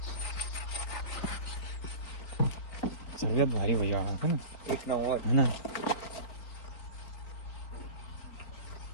सगळ्यात भारी भैया है ना. एक नंबर. है ना,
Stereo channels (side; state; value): right; late; 4.2 ms